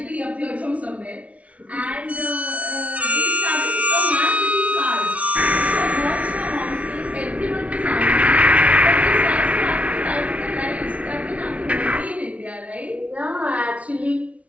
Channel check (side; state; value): left; late; 0.065 ms